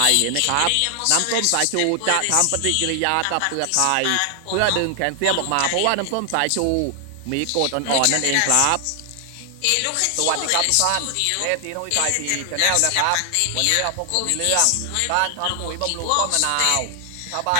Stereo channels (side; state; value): both; different; correlation 0.00